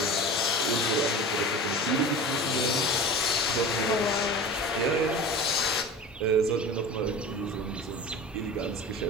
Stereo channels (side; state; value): both; normal; correlation 0.34